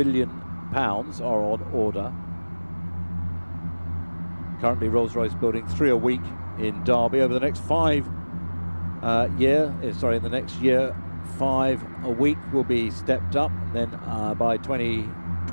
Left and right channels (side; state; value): both; inverted; correlation -1.00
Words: are on order. Currently, Rolls-Royce building 3 a week in Derby. Over the next in the next year, 5 a week will be stepped up, and then by